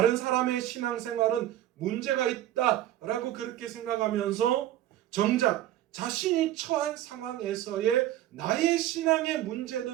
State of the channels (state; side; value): quieter; left; 13.3 dB